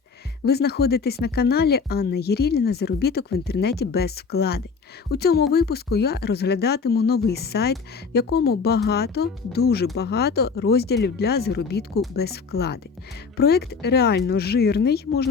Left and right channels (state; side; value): quieter; right; 5.2 dB